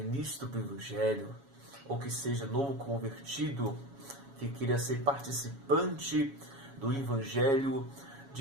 do Evangelho ou que seja novo convertido, que queira ser participante do Evangelho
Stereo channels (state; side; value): late; left; 7.2 ms